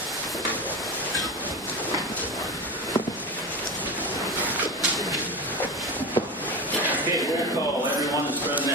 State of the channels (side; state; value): both; normal; correlation 0.23